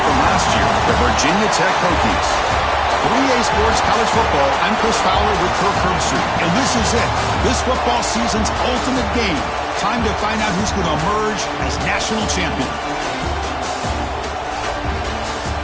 last year, the Virginia Tech Hokies. 3A Sports College Football, I'm Chris Fowler with Kirk Herbstreit, and this is it. This football season's ultimate game. Time to find out who's going to emerge as national champion.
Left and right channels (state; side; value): identical; both; correlation 1.00